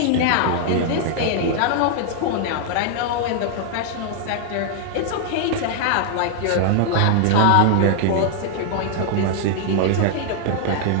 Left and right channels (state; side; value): different; both; correlation -0.01